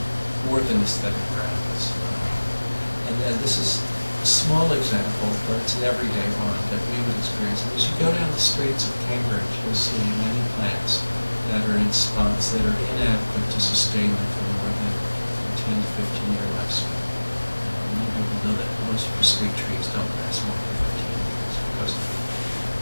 more than aesthetic grounds. And this is a small example, but it's an everyday one that we would experience. And as you go down the streets of Cambridge, you'll see many plants that are in spots that are inadequate to sustain them for more than 10 to 15-year lifespan. Many people know that most street trees don't last more than 15 years because of the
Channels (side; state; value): both; inverted; correlation -1.00